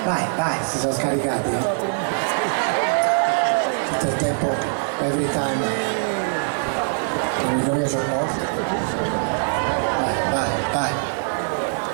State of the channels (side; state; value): left; silent; 64 dB below the other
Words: vai, si sono scaricati. Tutto il tempo, every time. Non mi voglio c'ho morto. Vai.